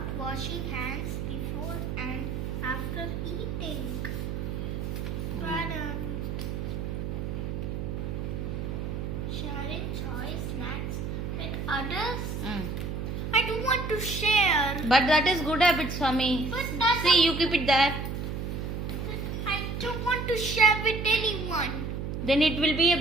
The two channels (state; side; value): noise; right; hum, 4 dB below the sound